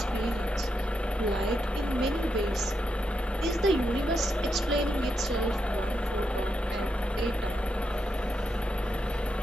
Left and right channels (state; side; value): normal; both; correlation 0.84